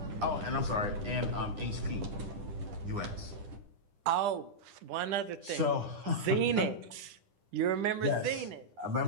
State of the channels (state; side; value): late; left; 9.9 ms